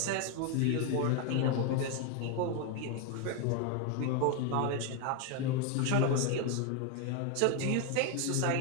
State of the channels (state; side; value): different; both; correlation 0.01